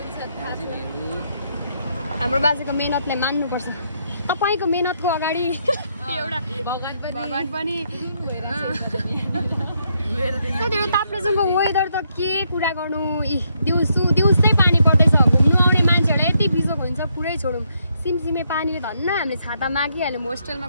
हाम्रो बाजेको मेहनतलाई मान्नुपर्छ तपाईँको मेहनतको अगाडि एउटा भगवान पनि ताप्लेजुङको वेदर त के कुरा गर्नु दिउँसै पानी पर्दैछ घुम्नु आउने मान्छेहरूलाई यति बिजोग हुन्छ पुरै छोडौँ सिमसिमे पानीले धन्न हामीले छाता मागिहाल्यौँ होस्टेलमा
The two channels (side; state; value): both; inverted; correlation -0.76